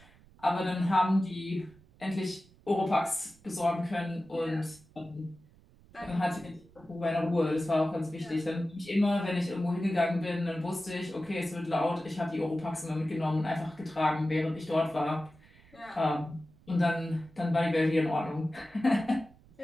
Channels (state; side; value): noise; right; rumble, 26 dB below the sound